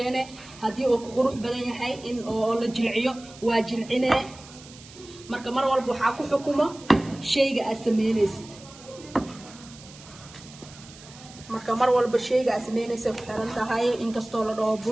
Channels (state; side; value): noise; right; hiss, 19 dB below the sound